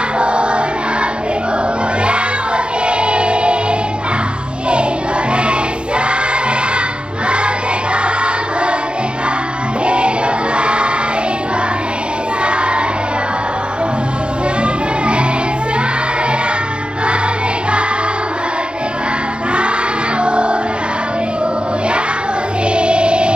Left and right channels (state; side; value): late; left; 0.055 ms